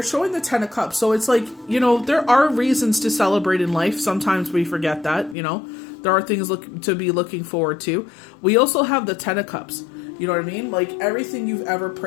showing the Ten of Cups. So it's like, there are reasons to celebrate in life. Sometimes we forget that, There are things to be looking forward to. We also have the Ten of Cups. You know what I mean? Like, everything you've ever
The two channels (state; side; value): drops out; right; at 5.4 s